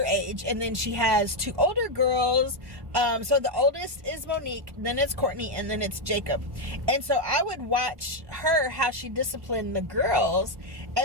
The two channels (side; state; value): left; late; 1.1 ms